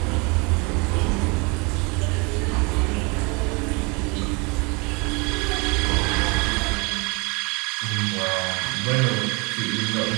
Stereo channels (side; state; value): left; quieter; 29.5 dB